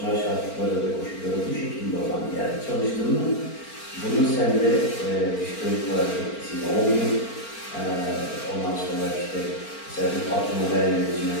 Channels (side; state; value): right; late; 4.4 ms